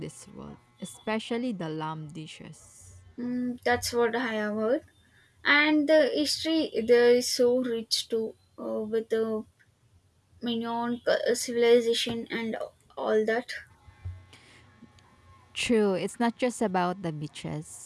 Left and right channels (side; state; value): both; identical; correlation 1.00